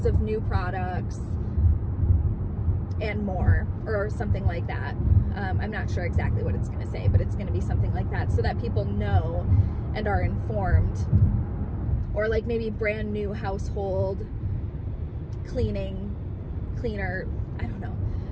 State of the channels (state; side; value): identical; both; correlation 1.00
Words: of new products, and more, or something like that. I'm not sure exactly what it's gonna say, but it's gonna be something like that so that people know and are informed. Or like maybe brand new household cleaner, I don't know,